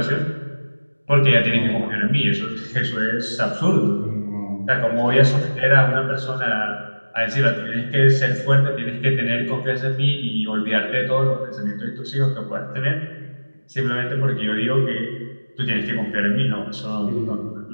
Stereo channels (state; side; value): inverted; both; correlation -1.00